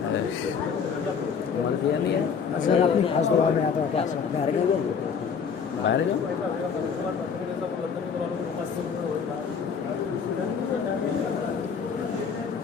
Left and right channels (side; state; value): right; quieter; 6.4 dB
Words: دیا نہیں ہے سر اپنی خاص دعا میں آتا ہے کیا سر باہر گئے باہر گئے